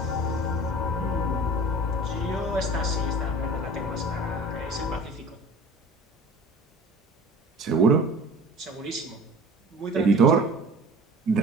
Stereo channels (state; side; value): normal; both; correlation 0.42